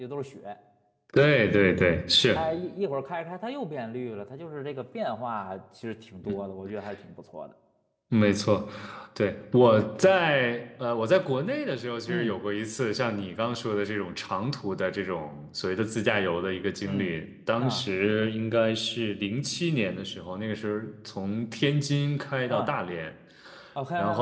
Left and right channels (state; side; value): identical; both; correlation 1.00